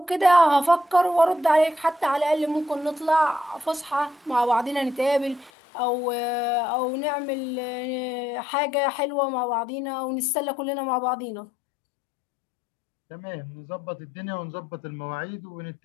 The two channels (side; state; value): right; drops out; at 5.5 s